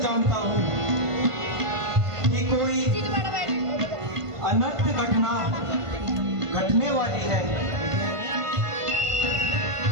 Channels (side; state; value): left; late; 1.5 ms